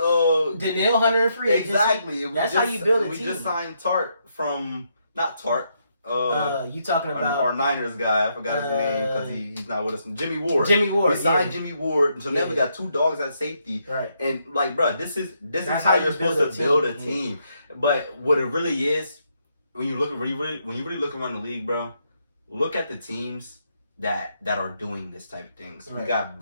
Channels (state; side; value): inverted; both; correlation -0.77